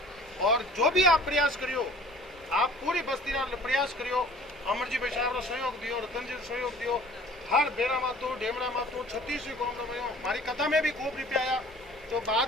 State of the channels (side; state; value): both; normal; correlation 0.49